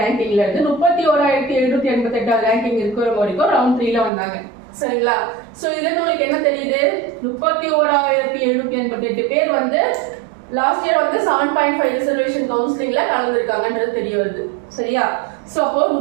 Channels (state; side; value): drops out; left; at 4.1 s